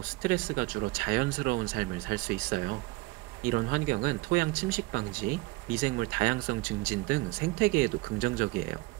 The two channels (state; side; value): quieter; left; 21.7 dB